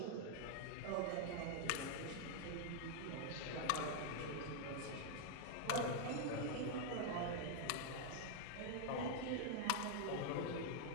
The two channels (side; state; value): both; different; correlation 0.00